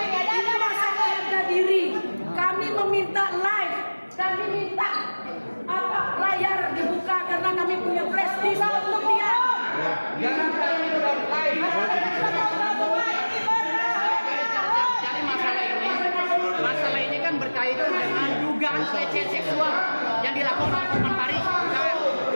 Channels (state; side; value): inverted; both; correlation -1.00